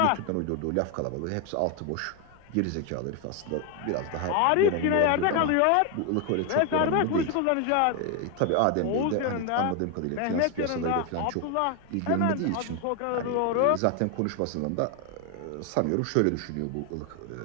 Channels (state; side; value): different; both; correlation 0.01